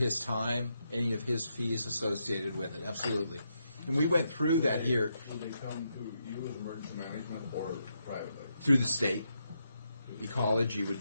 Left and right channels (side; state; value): both; inverted; correlation -0.81